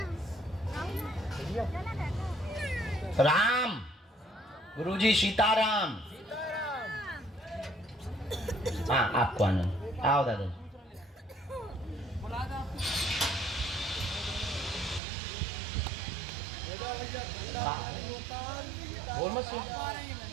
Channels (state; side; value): drops out; left; at 15.0 s